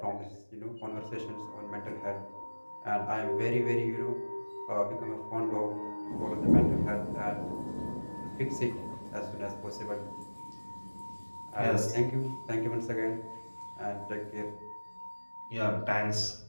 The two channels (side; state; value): both; inverted; correlation -1.00